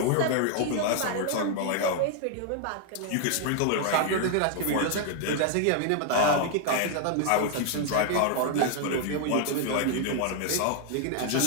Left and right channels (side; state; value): both; different; correlation 0.00